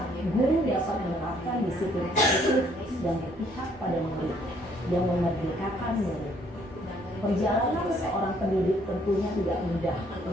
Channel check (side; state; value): both; normal; correlation 0.65